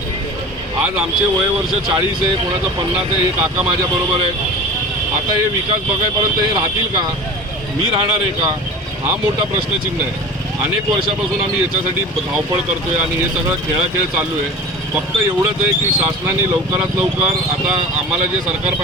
आज आमचे वयवर्ष 40 आहे, कोणाचं 50 आहे। हे काका माझ्याबरोबर आहे। आता हे विकास बघायपर्यंत हे राहतील का? मी राहणार आहे का? हा मोठा प्रश्नचिन्ह आहे। अनेक वर्षापासून आम्ही याच्यासाठी धावपळ करतोय आणि हे सगळं खेळाखेळ चालू आहे। फक्त एवढंच आहे की शासनाने लवकरात लवकर आता आम्हाला जे सरकार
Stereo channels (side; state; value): both; normal; correlation 0.36